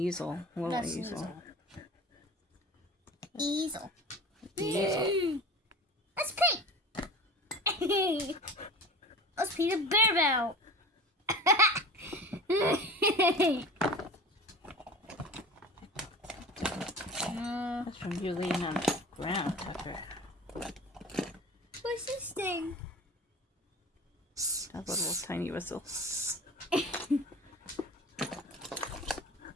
A little That's easel. Easel. Easel. That's pink. Let's Peter Bear Bow. That's from you laying on the ground, Tucker. What's this thing? That little tiny whistle.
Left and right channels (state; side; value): normal; both; correlation 0.37